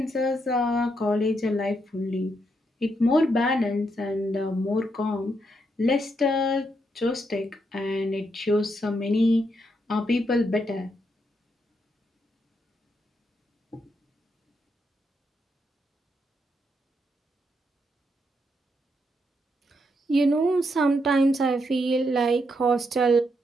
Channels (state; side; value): normal; both; correlation 0.79